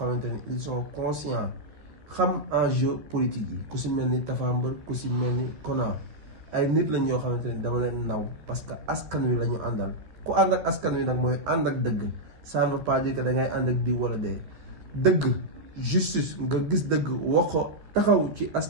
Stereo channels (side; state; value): left; late; 13 ms